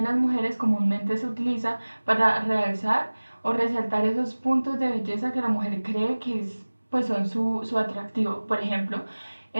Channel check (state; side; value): inverted; both; correlation -1.00